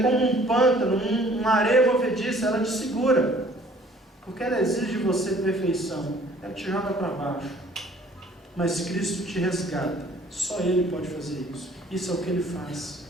como um pântano, uma areia movediça, ela te segura. Porque ela exige de você perfeição. Ela te joga para baixo. Mas Cristo te resgata. Só Ele pode fazer isso. Isso é o que Ele faz.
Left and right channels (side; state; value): both; normal; correlation 0.56